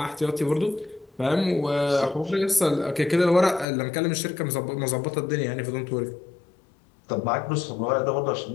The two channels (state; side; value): drops out; right; at 3.7 s